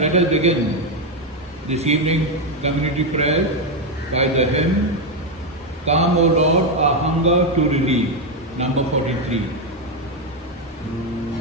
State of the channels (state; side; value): normal; both; correlation 0.06